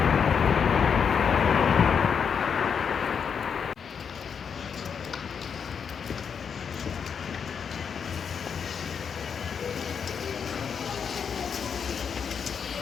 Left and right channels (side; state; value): right; quieter; 6.8 dB